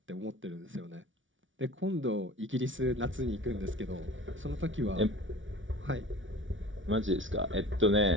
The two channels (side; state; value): left; late; 0.56 ms